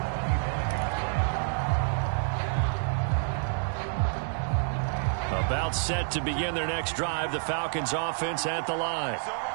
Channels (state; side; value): silent; left; 59 dB below the other